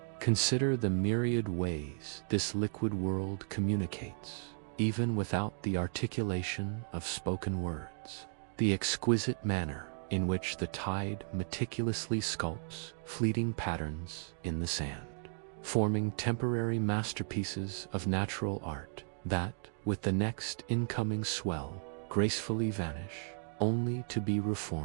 Consider the myriad ways this liquid world communicates, even without the articulation of spoken words. The exquisite manner in which the tide meticulously sculpts fleeting patterns in the sand, forming temporary masterpieces of natural art that, with the next incoming swell, gracefully vanish, only to be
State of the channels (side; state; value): left; silent; 54 dB below the other